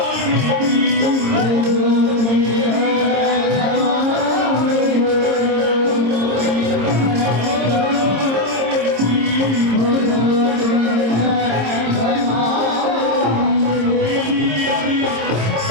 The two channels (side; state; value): left; late; 26 ms